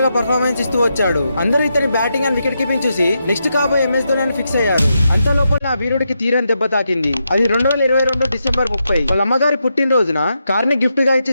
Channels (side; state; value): both; inverted; correlation -0.84